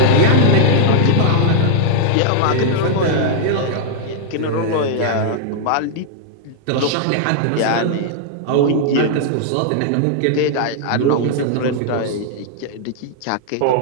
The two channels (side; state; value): both; different; correlation -0.01